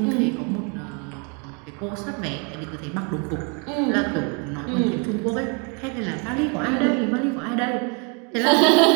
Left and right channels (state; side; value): quieter; left; 34.9 dB